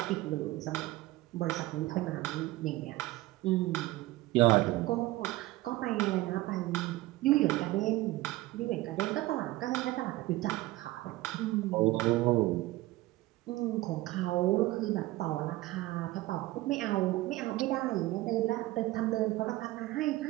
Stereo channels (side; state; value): left; quieter; 18.3 dB